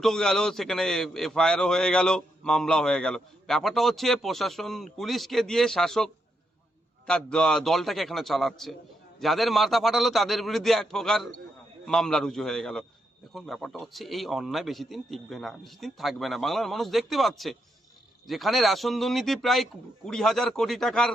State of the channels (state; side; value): normal; both; correlation 0.81